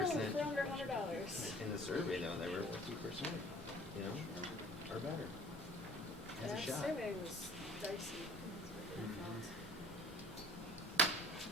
for under $100. In the survey though, they were 50%, you know, or better. Has a That shot. survey was dicey.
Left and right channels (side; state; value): both; normal; correlation 0.48